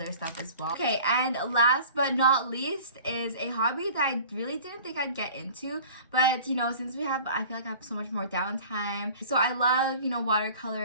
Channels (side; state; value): both; inverted; correlation -0.44